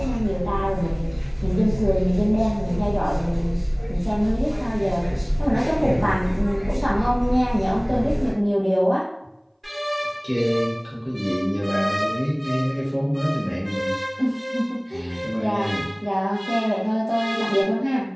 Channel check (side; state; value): both; identical; correlation 1.00